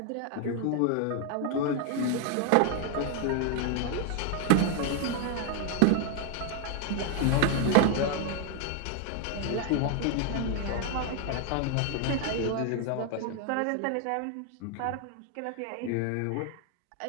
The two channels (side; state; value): both; different; correlation 0.00